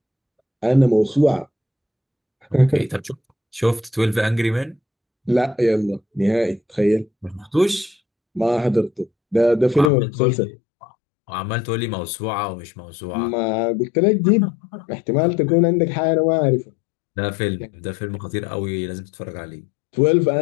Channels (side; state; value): right; drops out; at 9.9 s